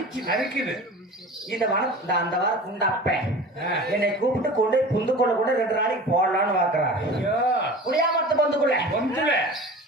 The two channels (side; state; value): both; normal; correlation 0.38